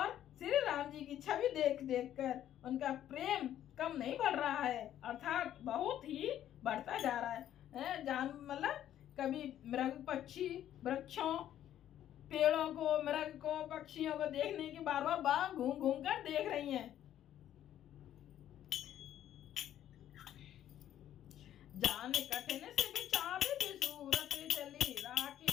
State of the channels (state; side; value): quieter; right; 11.5 dB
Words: श्री राम जी की छवि देख देख कर उनका प्रेम कम नहीं बढ़ रहा है, अर्थात बहुत ही बढ़ता जा रहा है। जान मतलब कभी मृग पक्षी वृक्षों पेड़ों को मृग को पक्षियों को देखने की बार बार घूम घूम कर देख रही हैं। जान कठिन से बिचारे सूरत चली